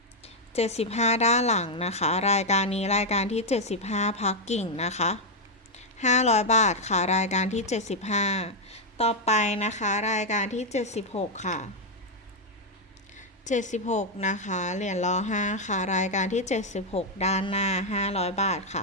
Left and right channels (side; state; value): both; normal; correlation 0.00